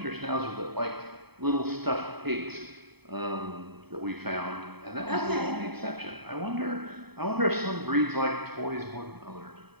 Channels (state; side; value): late; left; 0.97 ms